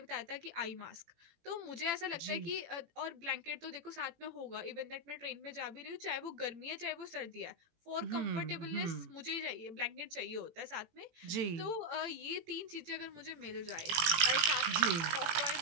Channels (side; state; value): left; late; 18 ms